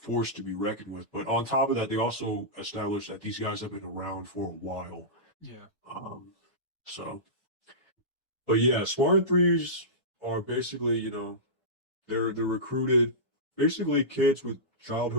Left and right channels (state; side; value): normal; both; correlation -0.17